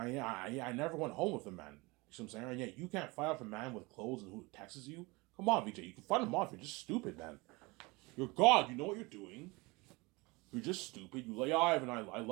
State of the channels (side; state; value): left; quieter; 24.8 dB